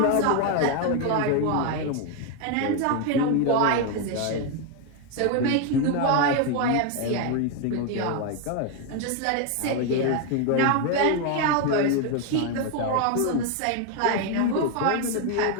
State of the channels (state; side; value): different; both; correlation 0.01